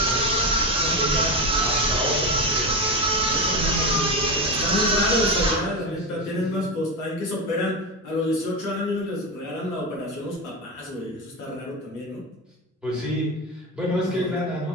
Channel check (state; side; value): normal; both; correlation 0.17